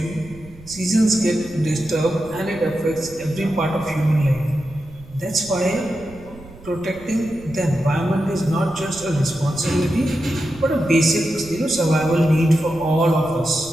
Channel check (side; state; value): right; noise; rumble, 20 dB below the sound